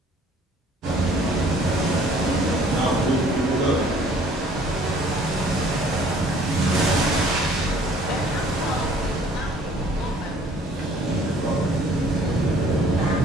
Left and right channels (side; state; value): both; normal; correlation 0.56